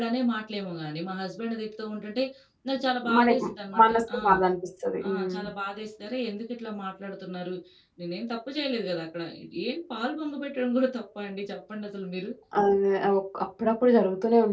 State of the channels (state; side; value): identical; both; correlation 1.00